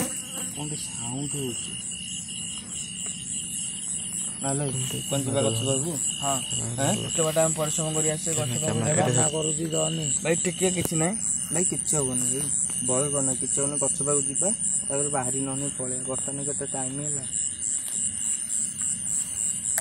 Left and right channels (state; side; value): identical; both; correlation 1.00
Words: କଣ ଗୋଟେ ସାଉଣ୍ଡ ହଉଛି। ନହେଲେ କଣ ଯିବା ଗଛ ପାଖକୁ? ହଁ ଏତେ ବାଟ ଆମେ ପରିଶ୍ରମ କରି ଆସିଛେ ଗଛ ପାଖକୁ କରୁଛି ଯାଅନି। ଭାଇ ଟିକେ କିଛି ନାହିଁ ଭାଇ କିଛି ହବନି ଭାଇ ଭୟ କରନା କିଛି ହବନି ଗଛ ପାଖକୁ ଯିବା ତାପରେ ବାହାରି ନହେଲେ ପଳେଇବା ବର୍ତ୍ତମାନ କେତେ ଟାଇମ ହେଲା